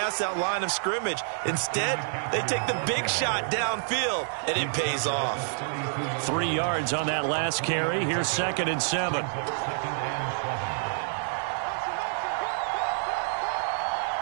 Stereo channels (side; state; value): left; silent; digital silence